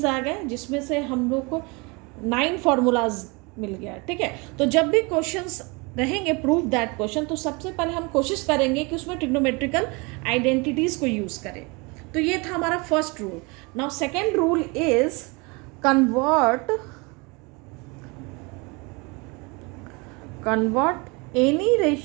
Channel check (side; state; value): left; quieter; 28.1 dB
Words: आ गए, जिसमें से हम लोग को 9 फार्मूलाज मिल गया। ठीक है, तो जब भी क्वेश्चंस रहेंगे प्रूव दैट क्वेश्चन, तो सबसे पहले हम कोशिश करेंगे कि उसमें ट्रिग्नोमेट्रिकल आइडेंटिटीज़ को यूज़ करें। तो ये था हमारा first rule. Now second rule is convert any